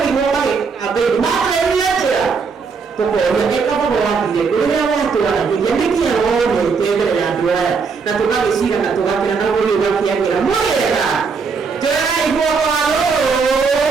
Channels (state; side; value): quieter; left; 5.2 dB